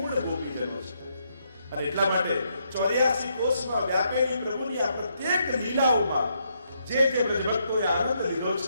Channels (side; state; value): both; inverted; correlation -0.77